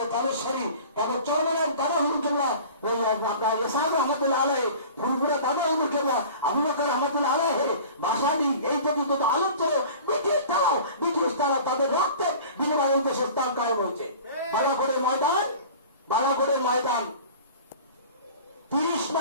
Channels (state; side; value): inverted; both; correlation -0.42